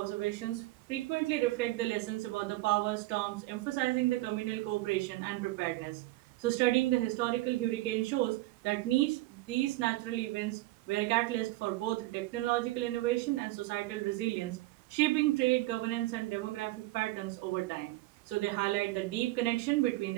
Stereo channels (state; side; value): quieter; left; 18.6 dB